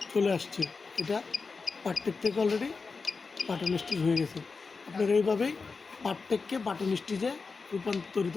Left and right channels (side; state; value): right; quieter; 4.5 dB